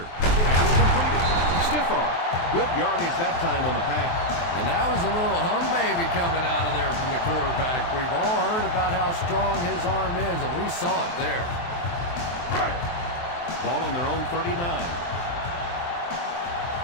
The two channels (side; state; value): right; late; 23 ms